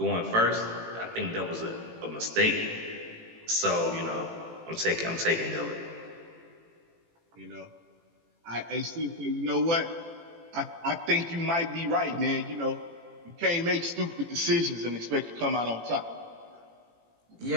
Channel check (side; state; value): left; late; 18 ms